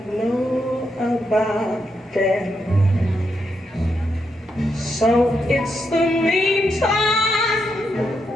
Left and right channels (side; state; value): both; normal; correlation 0.82